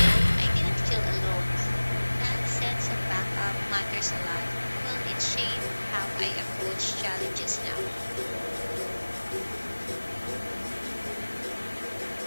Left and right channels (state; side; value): inverted; both; correlation -1.00